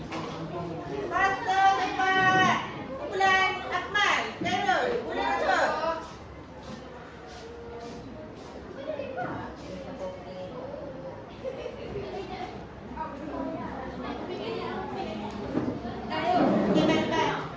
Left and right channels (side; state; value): both; identical; correlation 1.00